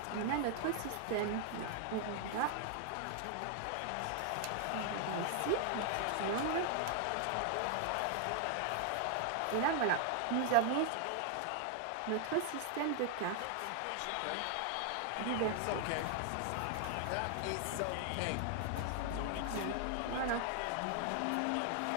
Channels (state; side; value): different; both; correlation 0.00